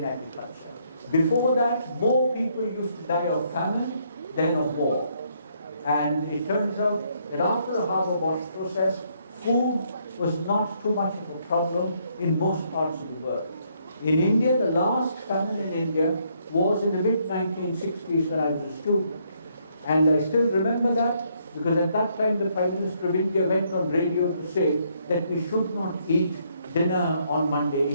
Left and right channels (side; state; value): both; inverted; correlation -0.71